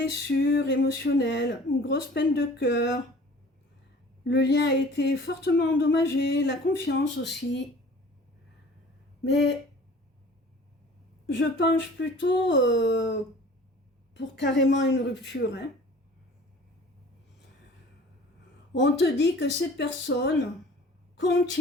émotionnelle, une grosse peine de cœur. Le lien a été fortement endommagé, la confiance aussi. Mais je penche plutôt pour carrément une rupture, hein. On te dit que cette personne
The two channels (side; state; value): both; normal; correlation 0.47